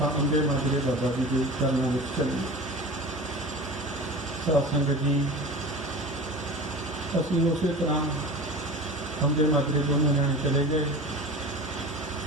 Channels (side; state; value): both; normal; correlation 0.35